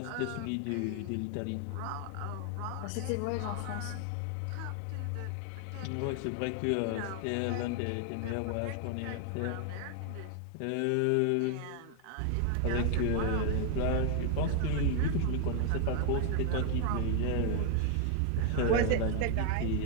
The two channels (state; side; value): different; both; correlation 0.00